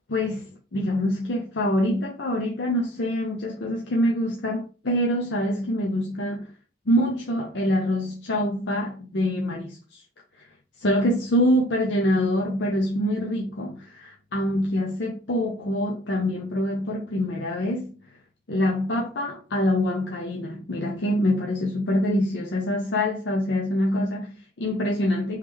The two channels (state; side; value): normal; both; correlation 0.56